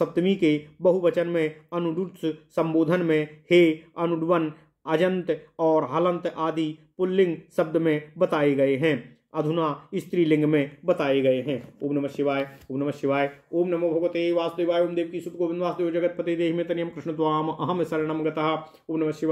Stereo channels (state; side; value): identical; both; correlation 1.00